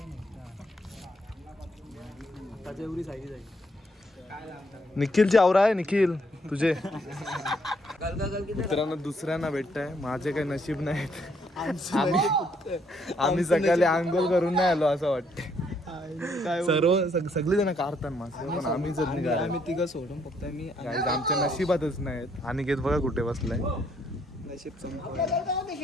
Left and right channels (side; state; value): both; normal; correlation 0.70